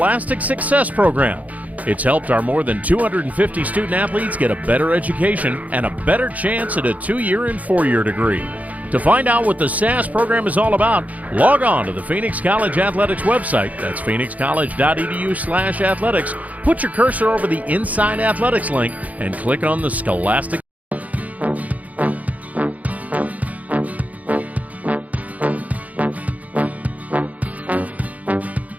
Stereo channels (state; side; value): late; left; 0.073 ms